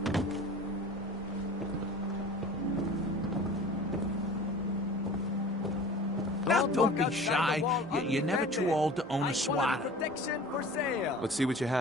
Now, don't be shy. You're never too old to own a swatter. Protection for sale. Let's see what you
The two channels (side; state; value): both; normal; correlation 0.41